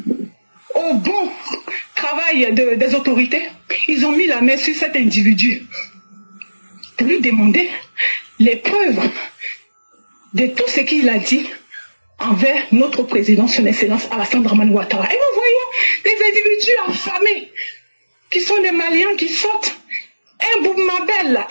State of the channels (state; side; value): inverted; both; correlation -1.00